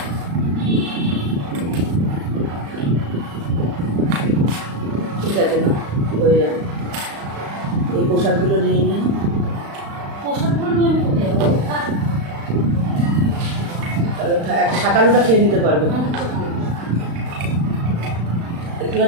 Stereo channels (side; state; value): left; late; 35 ms